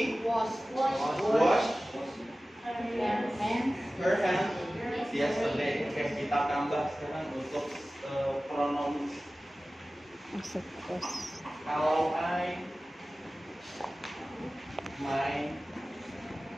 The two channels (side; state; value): both; normal; correlation 0.96